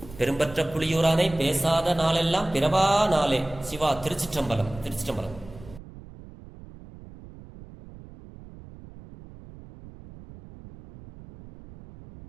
பெரும்பற்ற புலியூரானை பேசாத நாளெல்லாம் பிறவா நாளே. சிவா. திருச்சிற்றம்பலம். திருச்சிற்றம்பலம்.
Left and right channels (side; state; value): right; noise; rumble, 18 dB below the sound